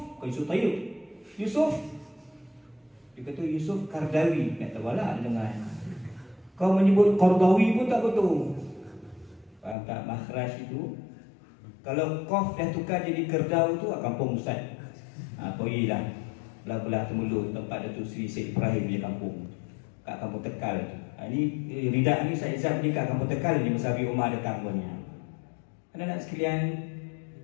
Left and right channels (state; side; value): drops out; right; at 9.8 s